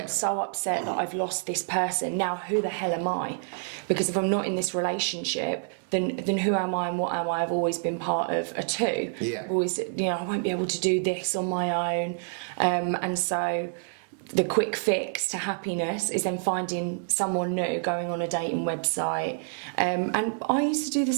so upset that I've lost this person. Now, who the hell am I? Because if I'm not in this relationship, than who am I and what am I. I've always been part of a two. Yeah. I've always, I won't be able to do this on my own. And so the quick fix to happiness is then finding someone new, going on a dating website. And I used to do the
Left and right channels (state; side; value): silent; left; digital silence